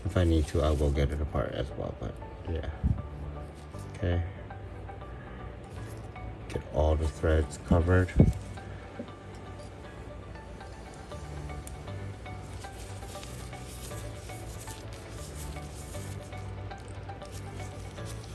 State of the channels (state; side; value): identical; both; correlation 1.00